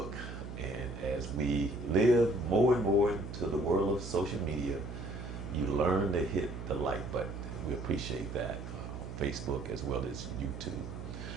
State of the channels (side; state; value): right; noise; hum, 9 dB below the sound